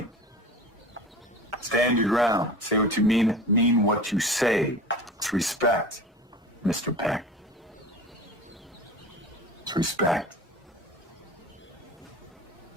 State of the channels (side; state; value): both; normal; correlation 0.35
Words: Stand your ground. Say what you mean what you say. It's respect, Mr. Peck. It's respect.